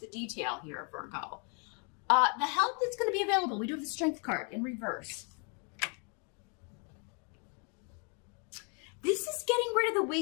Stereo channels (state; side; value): quieter; right; 37.3 dB